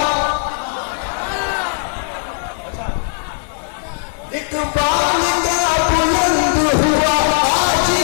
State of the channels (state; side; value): silent; right; 55 dB below the other